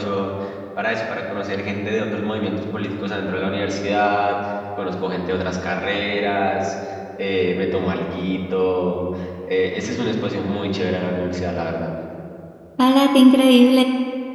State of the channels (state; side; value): identical; both; correlation 1.00